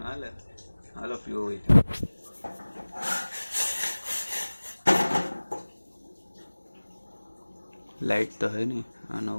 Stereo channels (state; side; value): inverted; both; correlation -1.00